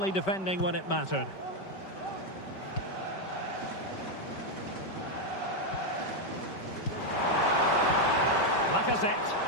defending when it mattered. Lacazette.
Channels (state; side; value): late; right; 5.2 ms